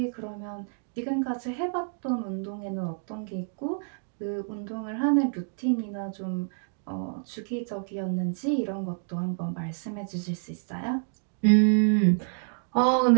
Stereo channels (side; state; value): left; silent; digital silence